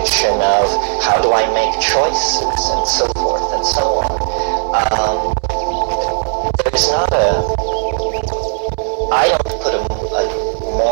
of how do I make choices, and so forth and so on. There is not I don't put a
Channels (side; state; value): left; silent; 69 dB below the other